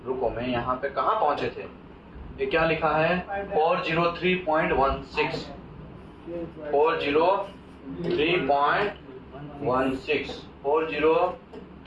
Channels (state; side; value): identical; both; correlation 1.00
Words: रुको मैं यहाँ पे कहाँ पहुंचे थे? ये क्या लिखा है? 403.16 403.16